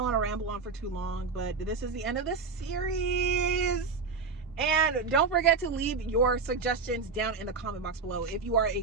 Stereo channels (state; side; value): quieter; left; 4.8 dB